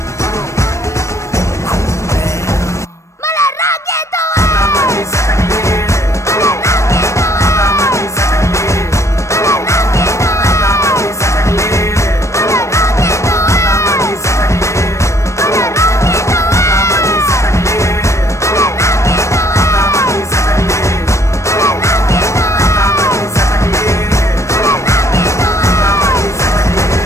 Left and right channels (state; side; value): late; right; 0.14 ms